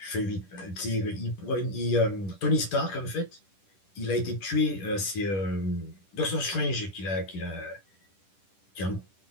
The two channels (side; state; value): right; late; 10 ms